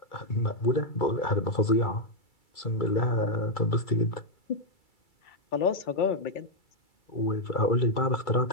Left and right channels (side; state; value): right; late; 2.3 ms